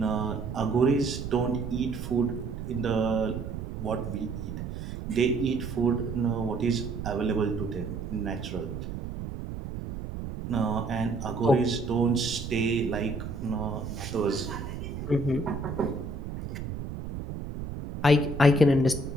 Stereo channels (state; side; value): noise; right; rumble, 7 dB below the sound